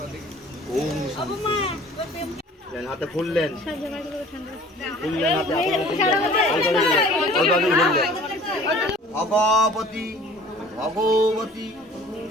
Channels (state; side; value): normal; both; correlation 0.49